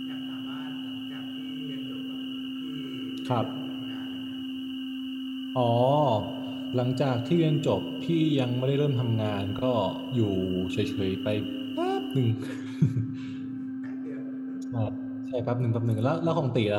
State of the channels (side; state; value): both; identical; correlation 1.00